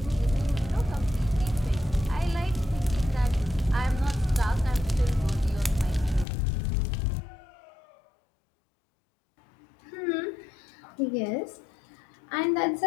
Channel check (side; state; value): right; drops out; at 6.2 s